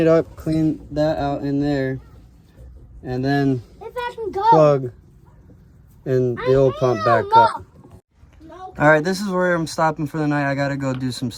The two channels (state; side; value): identical; both; correlation 1.00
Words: up, clean that out in there, and then plug in the old pump back up. All right, this is where I'm stopping for the night. I gotta go do some